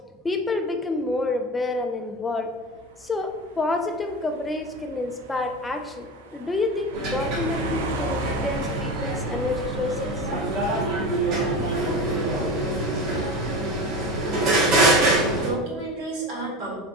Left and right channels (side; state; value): both; normal; correlation 0.27